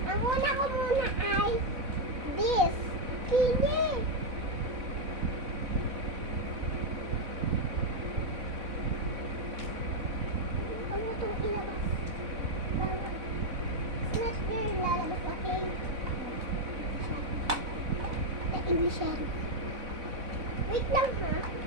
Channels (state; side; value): late; left; 4.0 ms